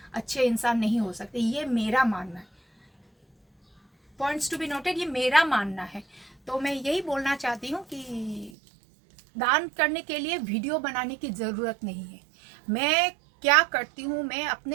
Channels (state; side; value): drops out; left; at 8.5 s